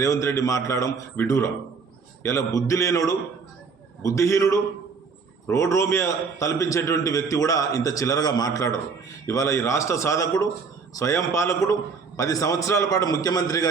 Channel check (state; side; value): quieter; left; 5.2 dB